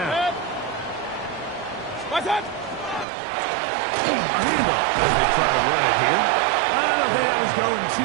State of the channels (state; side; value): drops out; left; at 3.1 s